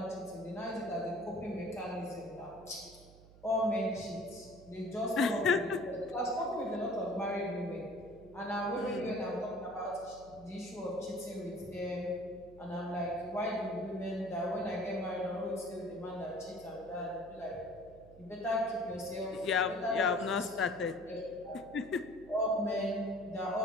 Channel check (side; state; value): right; noise; hum, 21 dB below the sound